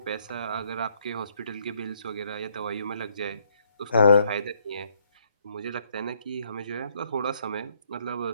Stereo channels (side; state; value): both; inverted; correlation -0.70